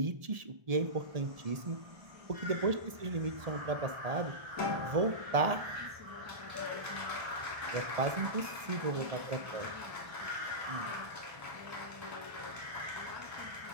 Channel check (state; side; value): late; left; 1.7 ms